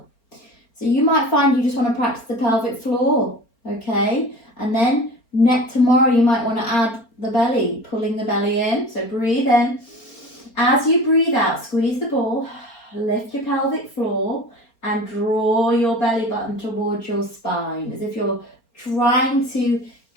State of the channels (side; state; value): right; late; 4.3 ms